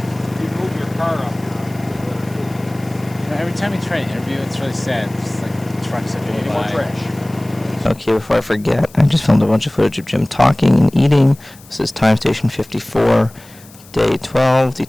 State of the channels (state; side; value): noise; left; hiss, 23 dB below the sound